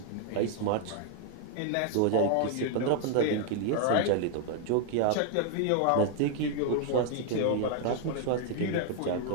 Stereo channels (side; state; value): both; different; correlation 0.00